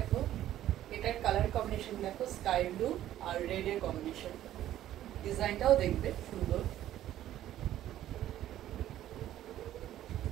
এটার কালার কম্বিনেশন দেখো, স্কাই ব্লু আর রেড এর কম্বিনেশন। ডিজাইনটাও দেখবে সুন্দর।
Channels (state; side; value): quieter; left; 12.7 dB